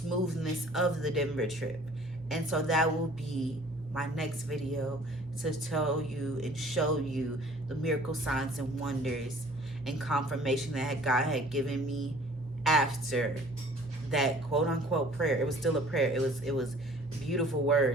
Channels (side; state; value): right; noise; hum, 26 dB below the sound